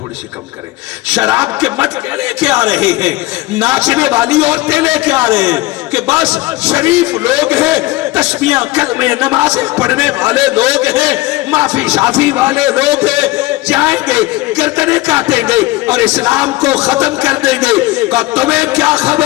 سی کم کریں، شراب کے مٹکے لے کے آ رہے ہیں، ناچنے والی عورتیں لے کے آ رہے ہیں کہ بس شریف لوگ ہیں، تسبیحاں کلمے نمازیں پڑھنے والے لوگ ہیں، معافی شافی والے لوگ ہیں، جائیں گے گردنیں کاٹیں گے اور اسلام کو ختم کر دیں گے۔ کہ تمہیں کیا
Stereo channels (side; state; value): right; quieter; 19.6 dB